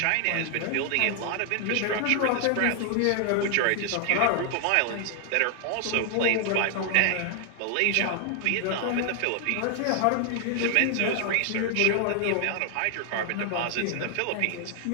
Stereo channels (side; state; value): both; different; correlation 0.00